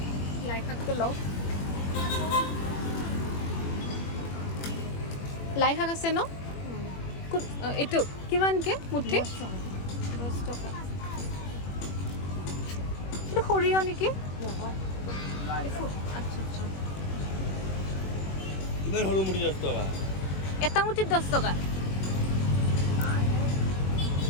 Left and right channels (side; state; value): right; late; 21 ms